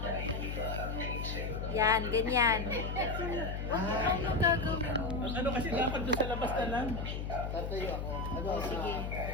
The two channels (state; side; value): noise; left; hum, 4 dB below the sound